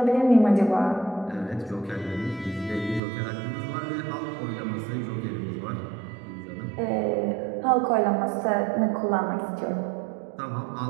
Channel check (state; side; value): drops out; left; at 3.0 s